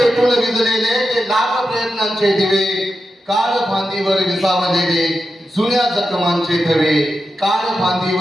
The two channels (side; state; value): both; normal; correlation 0.89